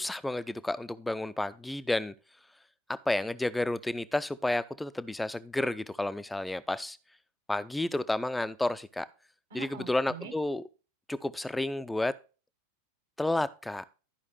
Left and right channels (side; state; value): both; normal; correlation 0.97